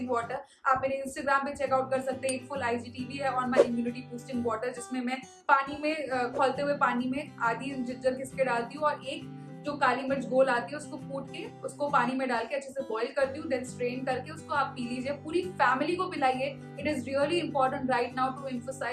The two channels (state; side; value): identical; both; correlation 1.00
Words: water. आप मेरे इंस्टाग्राम पे चेकआउट कर सकते हैं। एक फुल IGTV है on my immunity boosting water, जिसमें मैं पानी में खौलते हुए पानी में आधी जिंजर घिसके डालती हूँ और एक जो काली मिर्च गोल आती है उसको कूट के उसको पानी में डाल के अच्छे से बॉईल करती हूँ, देन स्ट्रेन करके उसको आप पी लीजिए। पूरी फैमिली को पिलाइए। It is really important right now to